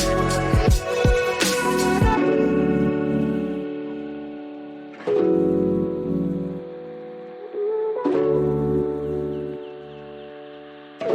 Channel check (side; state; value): both; identical; correlation 1.00